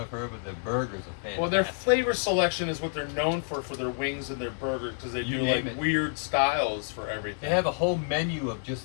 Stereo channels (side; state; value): right; silent; digital silence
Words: heard, but the burgers are fantastic. Well, their flavor selection is what they're known for their wings and their burgers, because they You do like name it. weird styles for everything. They have a whole menu of